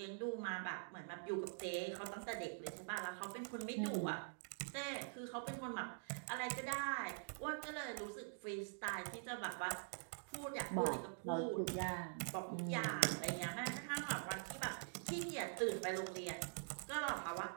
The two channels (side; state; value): left; silent; digital silence